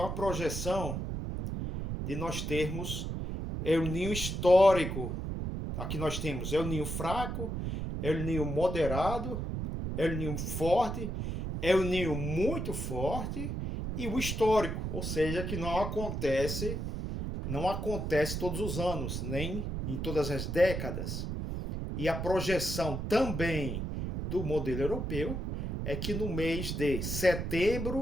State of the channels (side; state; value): right; noise; rumble, 3 dB below the sound